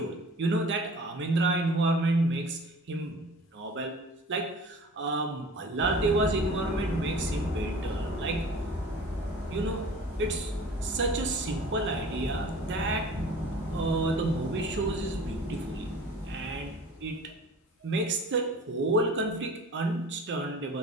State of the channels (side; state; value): both; normal; correlation 0.43